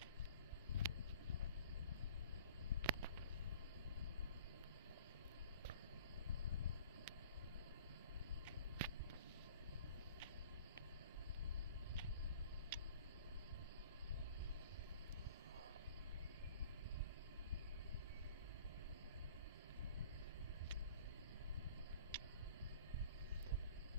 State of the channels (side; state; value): both; inverted; correlation -0.47